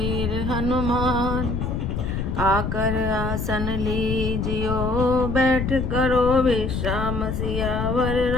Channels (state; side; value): noise; left; rumble, 2 dB below the sound